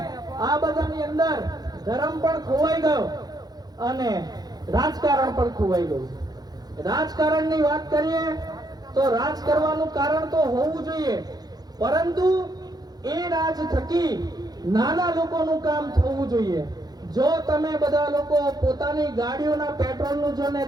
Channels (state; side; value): late; left; 0.19 ms